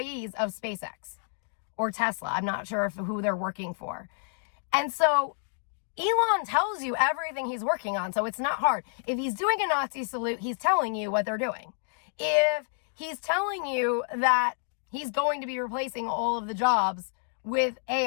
of SpaceX or Tesla. I'm not sure who they're working for. And so Elon tells you everything he's working on, so it's not hard. If he's doing a Nazi salute, he's telling you what they're doing. If he's telling you that he's going to be replacing all of the jobs with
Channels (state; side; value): silent; right; digital silence